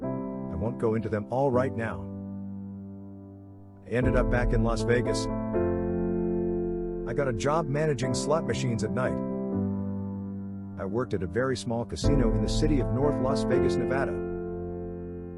I won't go into them all right now. I ended up back in Las Vegas. I got a job managing slot machines at night. I worked at a very small casino in the city of North Las Vegas, Nevada.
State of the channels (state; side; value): identical; both; correlation 1.00